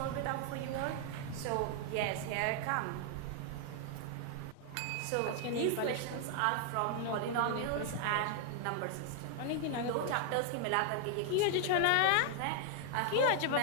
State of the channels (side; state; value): both; different; correlation 0.00